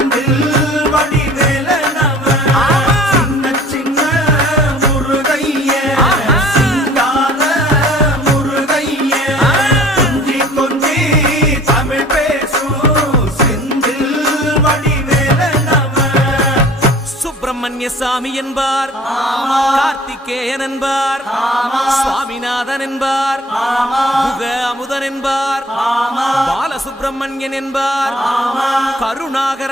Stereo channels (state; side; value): normal; both; correlation 0.49